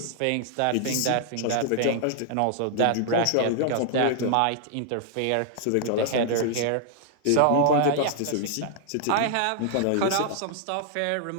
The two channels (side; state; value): both; different; correlation -0.01